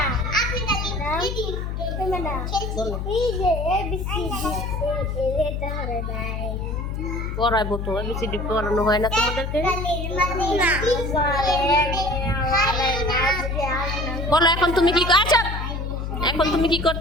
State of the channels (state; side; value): noise; left; hum, 4 dB below the sound